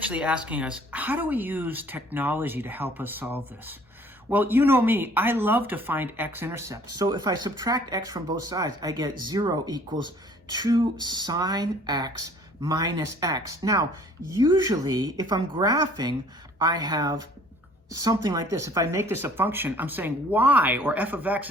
asking us, how do we use technology to help us solve this? Well, you know me, I love to find x-intercepts. So if I subtract x from both sides, I get 0 equals 2 sine x minus x. Now, usually, if I'm graphing, I have something like this. If I make this a function, I'm saying y, or f of x,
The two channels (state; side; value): normal; both; correlation 0.54